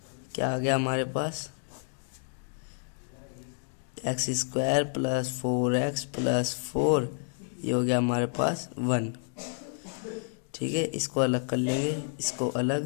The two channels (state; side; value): silent; right; 58 dB below the other